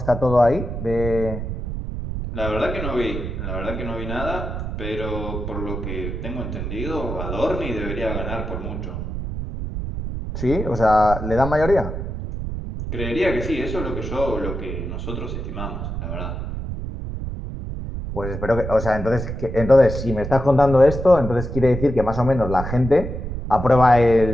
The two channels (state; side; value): noise; right; rumble, 5 dB below the sound